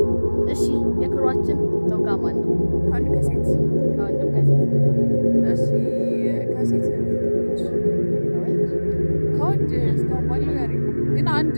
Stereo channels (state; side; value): inverted; both; correlation -1.00